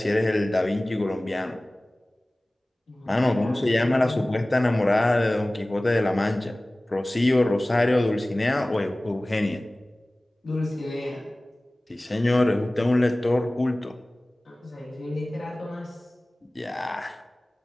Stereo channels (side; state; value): both; normal; correlation 0.98